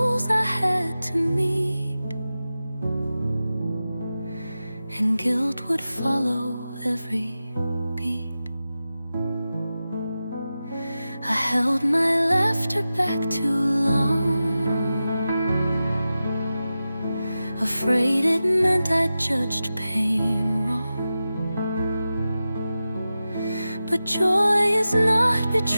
I had to meet, and guilt would follow every beat. I held my laughter back too long, afraid it meant I judged pain wrong. But joy is not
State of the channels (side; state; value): both; inverted; correlation -0.93